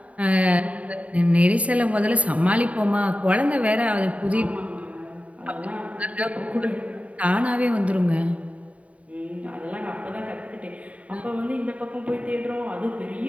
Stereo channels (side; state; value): left; late; 0.067 ms